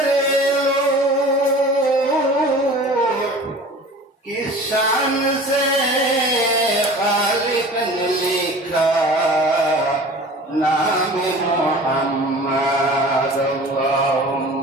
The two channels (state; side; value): normal; both; correlation 0.41